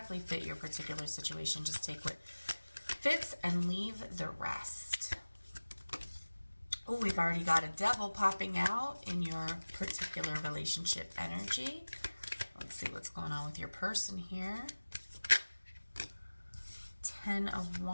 fit your particular situation. Just take what fits and leave the rest. Oh, we've already got a devil popping out in your particular relationship energy. Let's see what's going on with your person here. 10 of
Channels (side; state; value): both; inverted; correlation -1.00